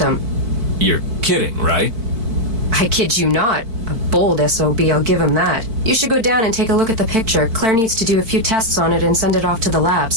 You're kidding, right? I kid you not. A bold SOB, I'll give him that. You should go down and take a look at the picture. Claire needs to do a few tests on it and send it off to the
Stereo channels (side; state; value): left; late; 4.5 ms